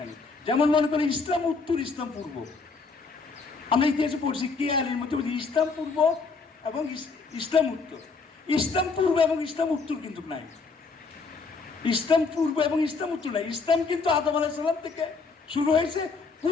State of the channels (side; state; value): right; quieter; 4.4 dB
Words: যেমন মনে করেন ইসলাম উত্তর, ইসলাম পূর্ব। আমরা ইতিহাসে পড়ছি কেয়ারের মধ্যে বলছি ইসলাম পূর্ব এবং ইসলাম উত্তর। ইসলাম পূর্ব এবং ইসলাম উত্তর কিন্তু নাই। ইসলাম পূর্ব এবং ইসলাম উত্তর নাই। ইসলাম কিন্তু আদম আলাইহিস সালাম থেকে শুরু হয়েছে,